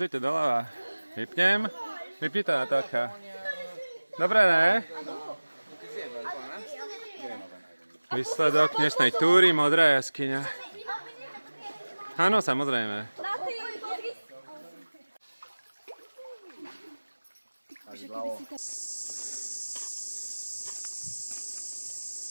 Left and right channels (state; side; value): inverted; both; correlation -1.00